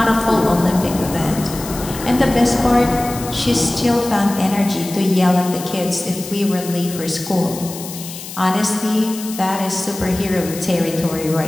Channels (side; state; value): left; noise; hiss, 12 dB below the sound